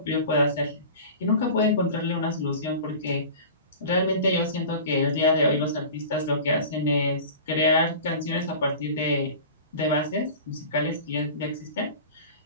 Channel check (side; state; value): both; inverted; correlation -0.37